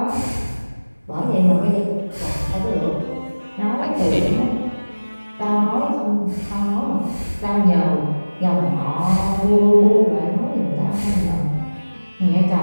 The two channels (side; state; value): both; inverted; correlation -1.00